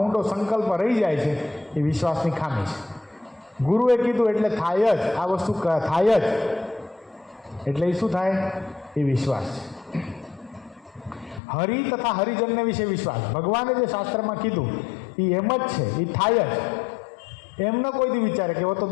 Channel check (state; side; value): drops out; right; at 11.4 s